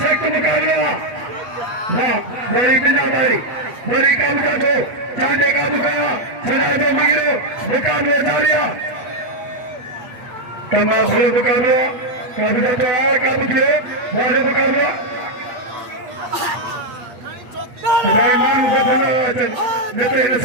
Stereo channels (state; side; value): late; left; 8.6 ms